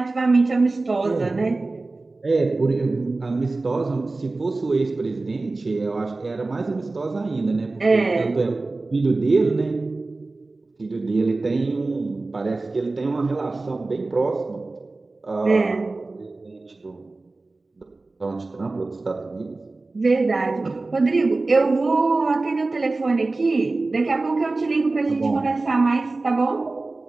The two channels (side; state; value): left; quieter; 3.3 dB